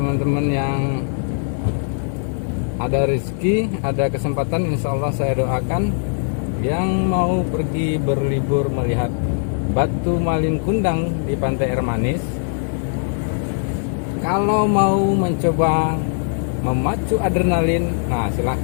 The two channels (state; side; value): silent; right; digital silence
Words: yang ada rezeki, ada kesempatan, insya Allah saya doakan yang mau pergi berlibur melihat batu malin kundang di Pantai Air Manis, kalau mau mencoba memacu adrenalin, nah